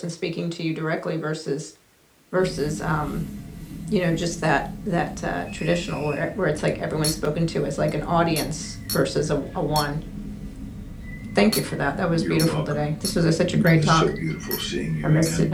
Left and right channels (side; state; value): both; identical; correlation 1.00